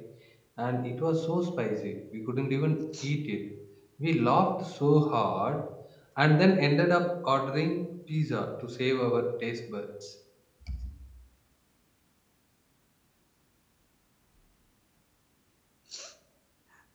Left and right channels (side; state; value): both; identical; correlation 1.00